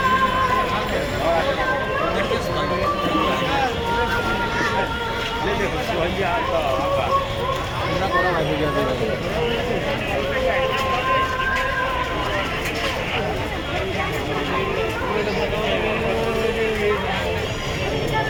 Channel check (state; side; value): identical; both; correlation 1.00